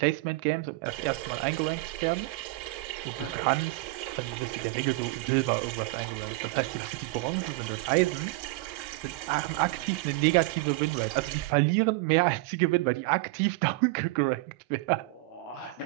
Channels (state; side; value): quieter; left; 21.7 dB